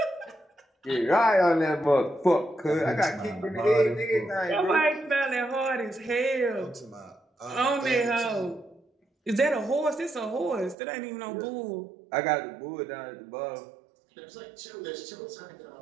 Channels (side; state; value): left; drops out; at 10.8 s